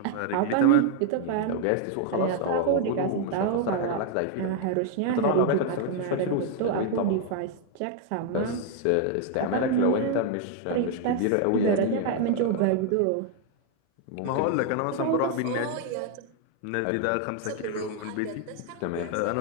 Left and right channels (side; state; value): both; different; correlation 0.00